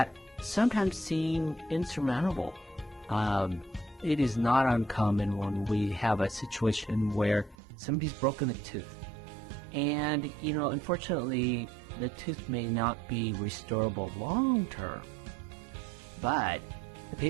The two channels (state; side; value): drops out; left; at 7.6 s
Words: sometimes seem insurmountable. It is not uncommon when we have a situation where somebody's broken a tooth. And, unfortunately, the tooth may not be restorable long term, but the